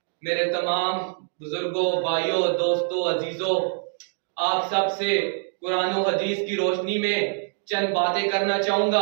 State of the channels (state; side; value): silent; left; 59 dB below the other